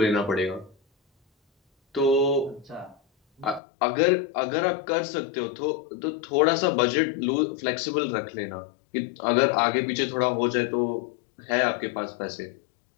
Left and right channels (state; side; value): drops out; right; at 3.6 s